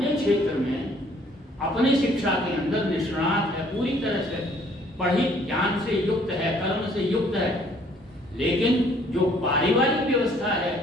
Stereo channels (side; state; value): both; normal; correlation 0.60